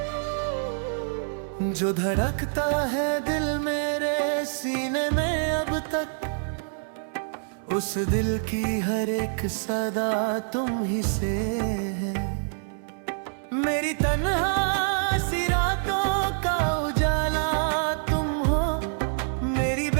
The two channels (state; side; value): silent; left; digital silence